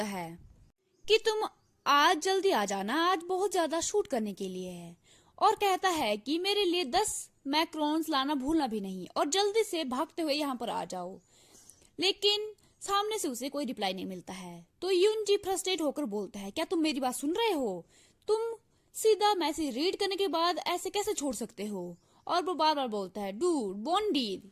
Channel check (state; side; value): identical; both; correlation 1.00